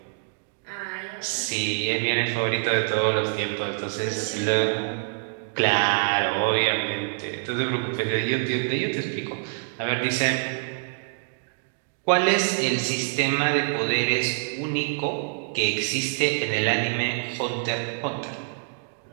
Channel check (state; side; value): silent; left; digital silence